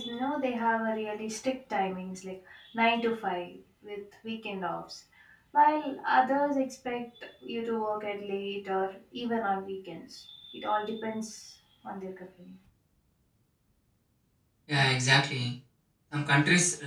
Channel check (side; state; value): both; identical; correlation 1.00